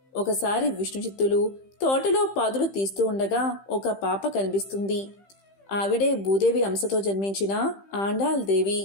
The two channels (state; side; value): late; right; 15 ms